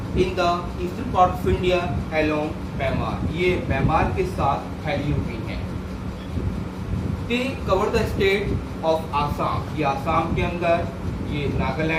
in the eastern part of India along Myanmar, ये म्यांमार के साथ फैली हुई हैं। They cover the state of Assam, ये आसाम के अंदर, ये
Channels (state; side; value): identical; both; correlation 1.00